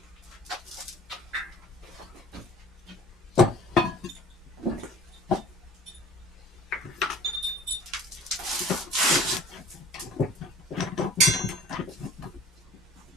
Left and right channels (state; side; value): normal; both; correlation 0.46